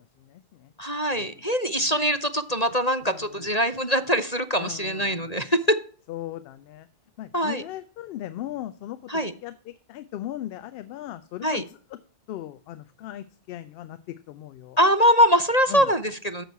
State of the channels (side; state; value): right; late; 1.8 ms